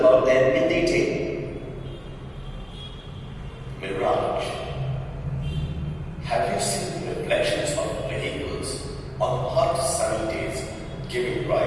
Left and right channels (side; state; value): both; identical; correlation 1.00